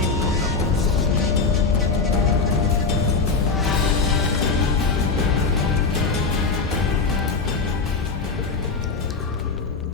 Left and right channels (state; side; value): quieter; right; 4.4 dB